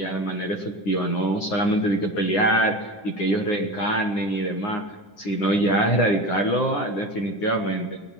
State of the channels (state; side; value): late; right; 10 ms